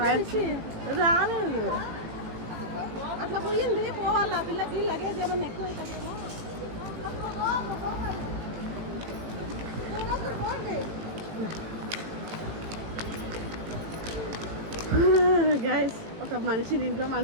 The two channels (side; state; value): left; late; 18 ms